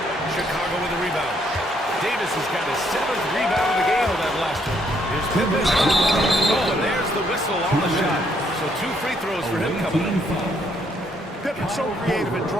Chicago with a rebound. Davis has got his 7th rebound of the game on that last one. Here's Pippen. Oh, and there's the whistle on the shot. So 2 free throws for him coming up. Pippen's so creative at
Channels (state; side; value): normal; both; correlation 0.70